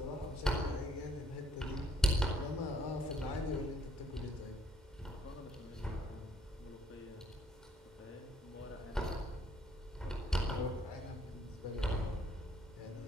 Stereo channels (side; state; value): both; normal; correlation 0.66